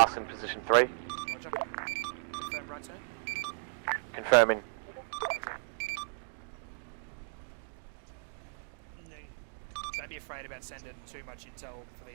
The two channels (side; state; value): left; silent; digital silence